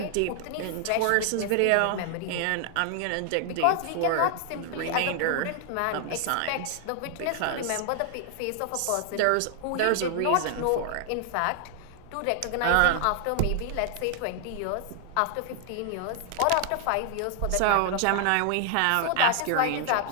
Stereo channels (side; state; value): both; different; correlation 0.00